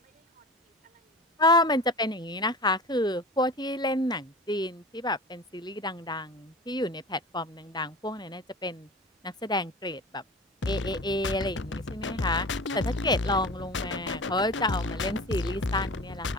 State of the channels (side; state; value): both; normal; correlation 0.35